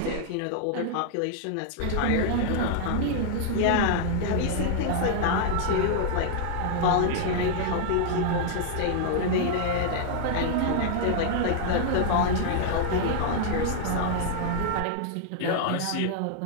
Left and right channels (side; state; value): both; different; correlation -0.01